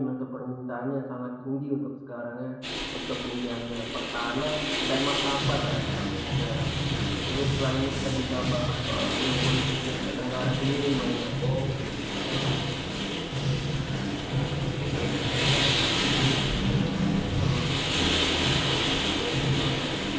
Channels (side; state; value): both; identical; correlation 1.00